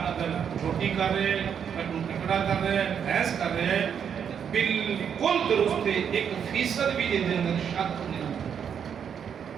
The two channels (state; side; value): quieter; left; 7.8 dB